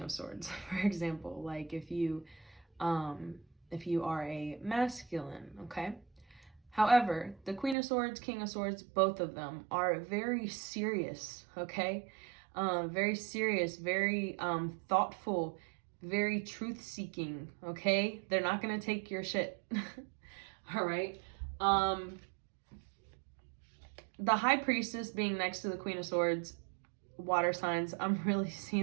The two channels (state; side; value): drops out; left; at 7.8 s